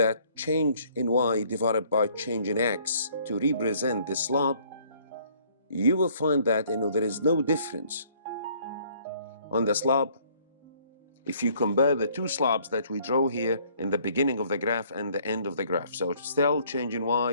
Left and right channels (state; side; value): inverted; both; correlation -0.61